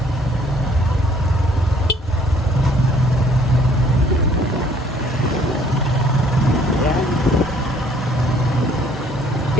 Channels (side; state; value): both; normal; correlation 0.60